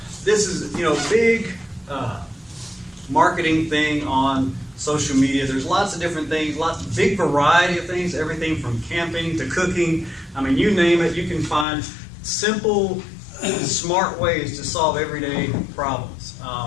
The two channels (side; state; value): right; drops out; at 11.7 s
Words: this is, a big marketing thing on social media. There's lots of different things, big variety of things, everything from camping to cooking. I mean, you name it, you can find simple, smart ways to solve everyday problems.